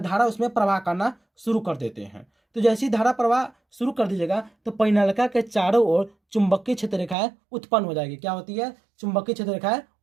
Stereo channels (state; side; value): drops out; left; at 7.2 s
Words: धारा उसमें प्रवाह करना शुरू कर देते हैं। तो जैसी धारा प्रवाह शुरू कर दीजिएगा तो परिनालिका के चारों ओर चुंबकीय क्षेत्र रेखाएं उत्पन्न हो जाएगी। क्या होती है? चुंबकीय क्षेत्र रेखाएं